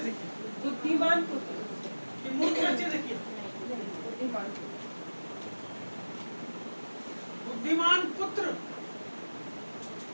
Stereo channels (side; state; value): both; inverted; correlation -1.00